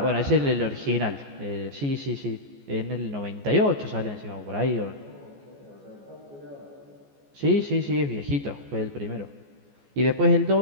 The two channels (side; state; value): left; late; 14 ms